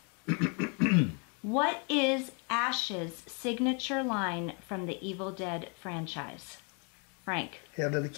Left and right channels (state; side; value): quieter; right; 36.0 dB